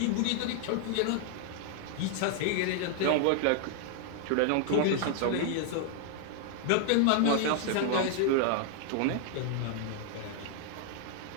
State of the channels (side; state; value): both; different; correlation 0.00